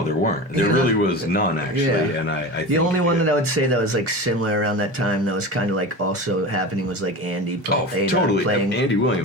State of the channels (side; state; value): both; normal; correlation 0.29